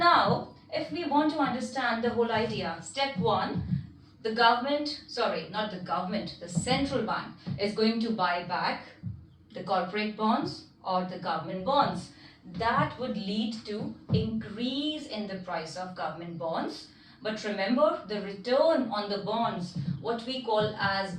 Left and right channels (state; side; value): identical; both; correlation 1.00